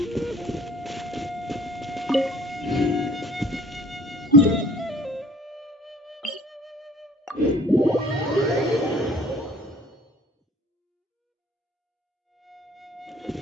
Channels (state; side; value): normal; both; correlation 0.51